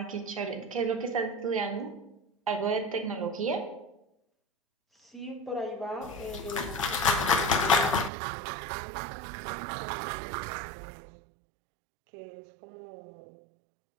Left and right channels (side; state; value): left; drops out; at 8.1 s